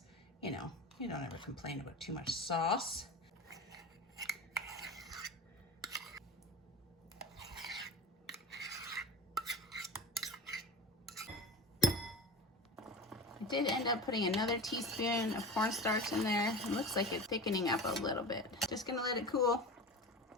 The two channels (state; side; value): normal; both; correlation 0.31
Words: you know, you don't ever complain about too much sauce. I did end up putting another teaspoon of cornstarch in there. It looks like it's thickening up a little bit. Just gonna let it cool.